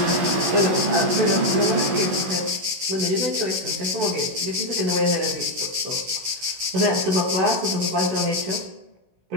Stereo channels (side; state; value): left; late; 16 ms